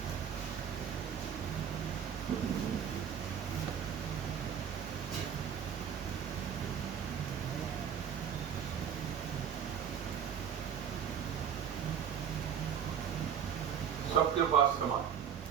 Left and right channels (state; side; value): quieter; left; 8.2 dB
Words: सबके पास समान,